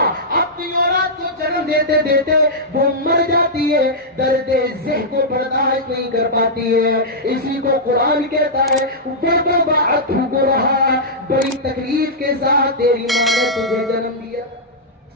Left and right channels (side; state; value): both; normal; correlation -0.10